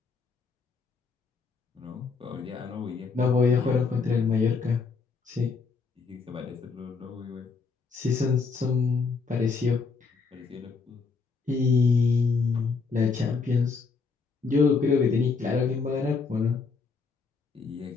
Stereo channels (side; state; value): right; quieter; 4.8 dB